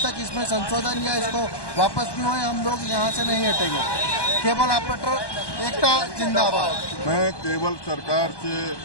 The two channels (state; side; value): late; right; 1.2 ms